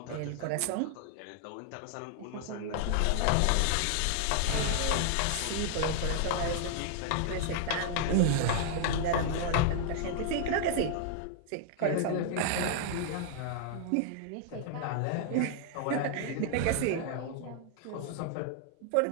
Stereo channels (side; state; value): both; different; correlation 0.00